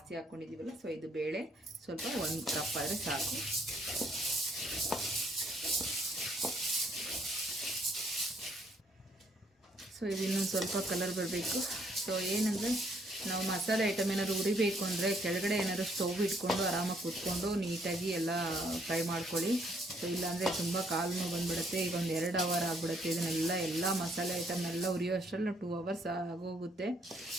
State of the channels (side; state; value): both; normal; correlation 0.68